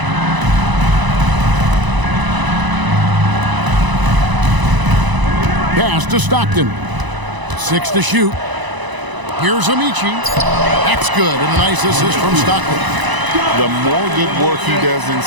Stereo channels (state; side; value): late; left; 1.0 ms